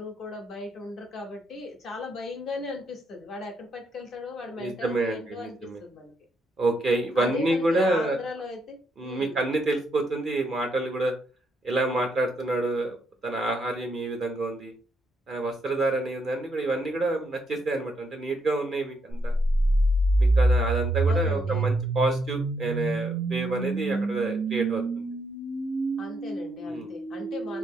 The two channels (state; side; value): normal; both; correlation 0.76